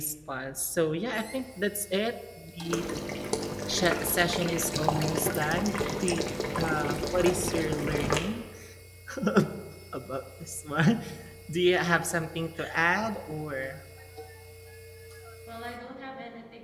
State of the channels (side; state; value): both; identical; correlation 1.00